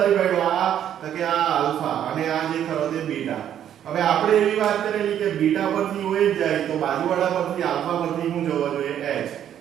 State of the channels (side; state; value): left; quieter; 10.2 dB